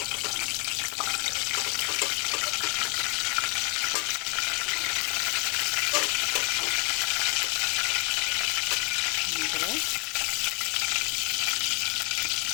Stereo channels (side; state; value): right; quieter; 29.2 dB